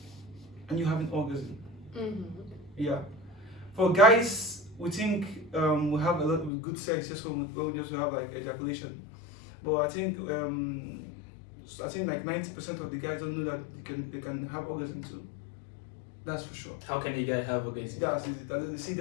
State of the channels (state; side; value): drops out; right; at 6.5 s